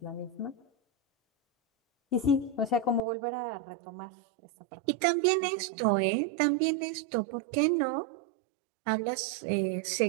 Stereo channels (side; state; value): left; drops out; at 3.0 s